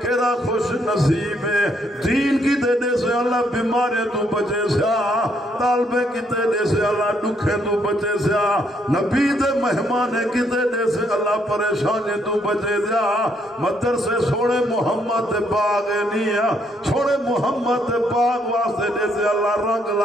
کیرا خوش نصیب ہے دین کی دینے سے اللہ بیمارے تو بچے سیا طالبے کی دینے سے اللہ دکھے تو بچے سیا نبی دے مہمانے کی دینے سے اللہ پریشانے تو بچے سیا مدرسے سوڑے محمد دے باغ نیا سوڑے محمد دے باغ واسطے دے سے اللہ رنگ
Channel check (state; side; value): normal; both; correlation 0.71